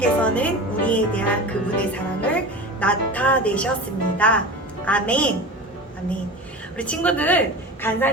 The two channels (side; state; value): both; normal; correlation 0.31